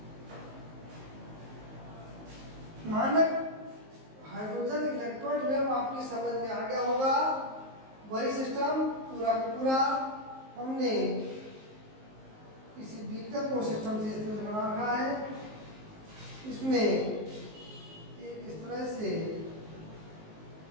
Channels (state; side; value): late; left; 19 ms